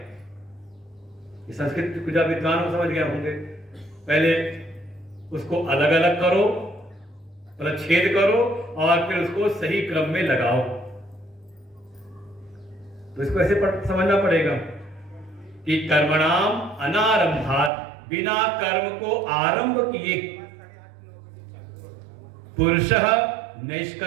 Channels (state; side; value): drops out; left; at 17.7 s